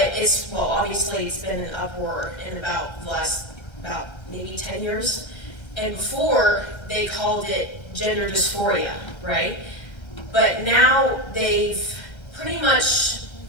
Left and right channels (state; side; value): late; right; 2.1 ms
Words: obviously it's been an uproar in about the last, maybe 10 years. And before, they called it gender dysphoria, right? But now they've pretty much